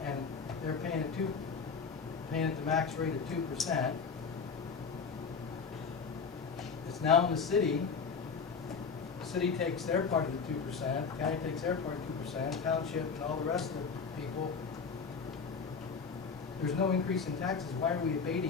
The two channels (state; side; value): quieter; right; 5.5 dB